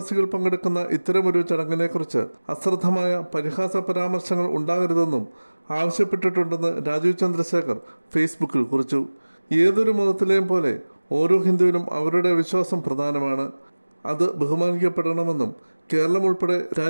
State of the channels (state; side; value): inverted; both; correlation -1.00